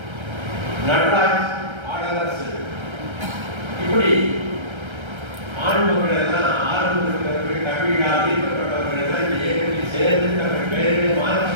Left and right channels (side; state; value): left; late; 1.3 ms